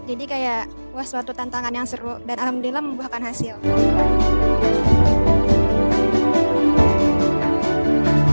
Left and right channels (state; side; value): inverted; both; correlation -1.00